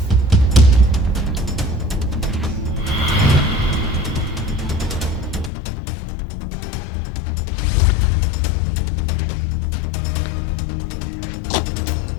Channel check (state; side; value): drops out; right; at 5.5 s